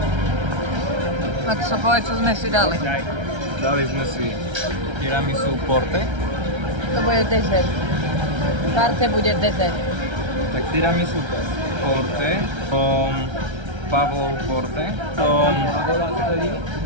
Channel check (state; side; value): late; left; 1.3 ms